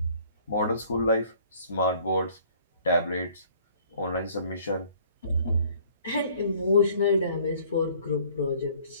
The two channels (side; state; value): both; inverted; correlation -0.57